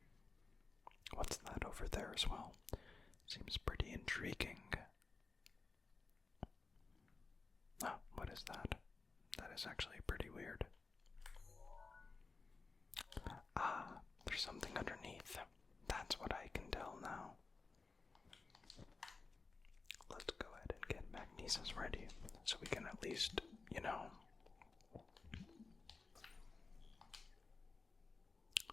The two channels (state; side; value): quieter; right; 4.1 dB